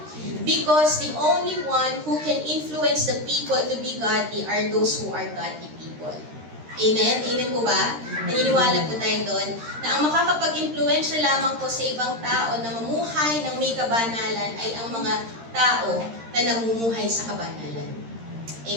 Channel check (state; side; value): late; left; 13 ms